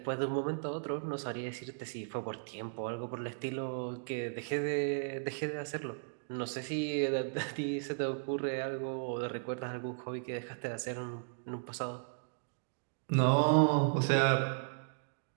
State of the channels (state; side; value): silent; left; digital silence